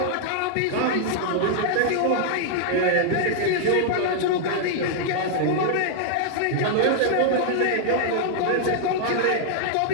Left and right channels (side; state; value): both; different; correlation -0.01